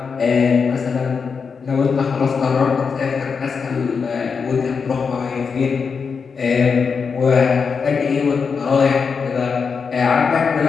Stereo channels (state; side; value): quieter; right; 5.6 dB